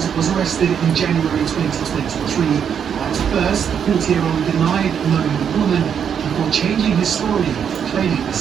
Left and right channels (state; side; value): quieter; left; 7.9 dB